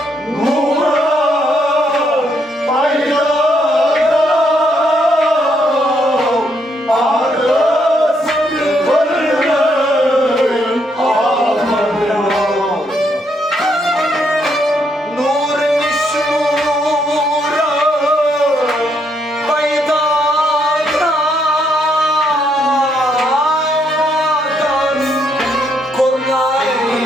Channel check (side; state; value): both; normal; correlation 0.74